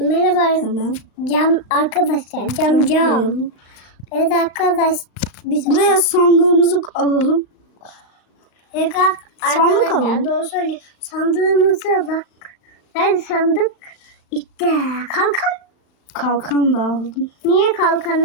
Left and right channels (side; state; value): right; late; 35 ms